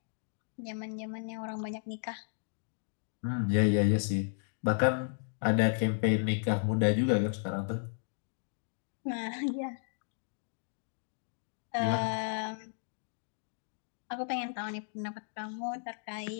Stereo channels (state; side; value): silent; right; digital silence